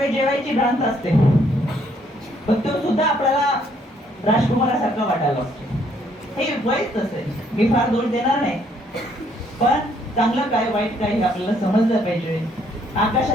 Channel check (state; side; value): normal; both; correlation 0.67